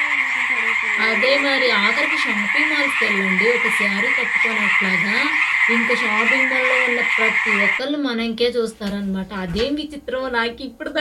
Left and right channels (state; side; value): identical; both; correlation 1.00